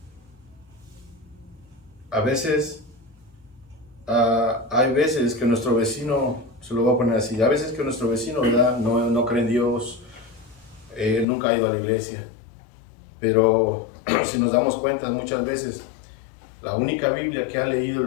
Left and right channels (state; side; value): drops out; right; at 11.2 s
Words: A veces, hay veces que nuestro vecino, se lo voy a poner así, a veces que nuestro vecino, ¿verdad?, no cree en Dios, nunca ha ido a la iglesia, pero si nos damos cuenta, muchas veces la única Biblia que ha leído